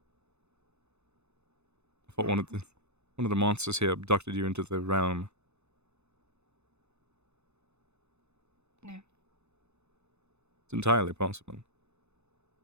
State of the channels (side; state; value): left; late; 0.81 ms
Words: I thought one of the monsters here abducted you into the realm. No. It's entirely possible.